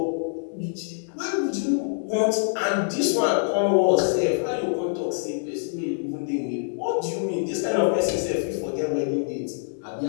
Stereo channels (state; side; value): silent; right; 62 dB below the other